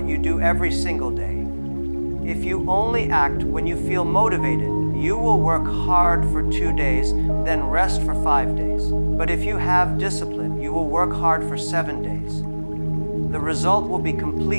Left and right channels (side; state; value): both; inverted; correlation -1.00